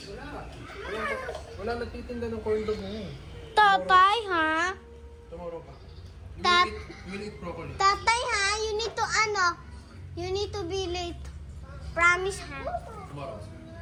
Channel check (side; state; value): both; identical; correlation 1.00